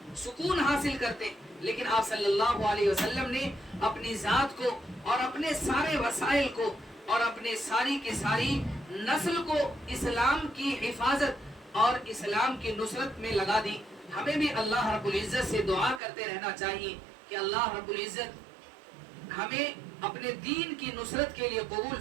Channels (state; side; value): drops out; left; at 16.0 s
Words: سکون حاصل کرتے ہیں، لیکن آپ صلی اللہ علیہ وسلم نے اپنی ذات کو اور اپنے سارے وسائل کو اور اپنے ساری کی ساری نسل کو اسلام کی حفاظت اور اسلام کی نصرت میں لگا دی۔ ہمیں بھی اللہ رب العزت سے دعا کرتے رہنا چاہیے کہ اللہ رب العزت ہمیں اپنے دین کی نصرت کے لیے قبول